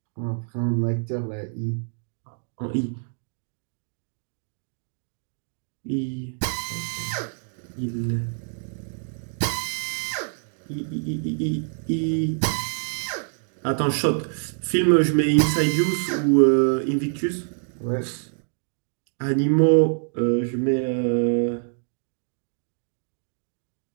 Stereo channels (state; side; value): silent; left; 61 dB below the other